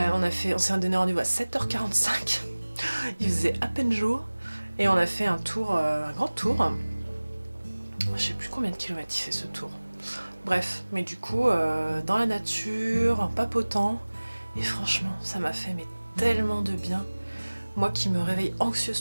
s'est donné rendez-vous à 7h45. Il faisait à peine jour. Et on a fait un tour, un grand tour. Je sais plus combien de kilomètres il fait ce tour. Bref, mais du coup, dans la nature, en papotant. Et franchement, ça m'a fait mais tellement de bien. Moi qui me réveille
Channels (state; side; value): inverted; both; correlation -1.00